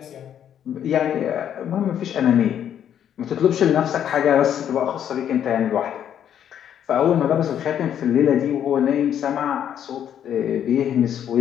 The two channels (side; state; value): right; quieter; 9.6 dB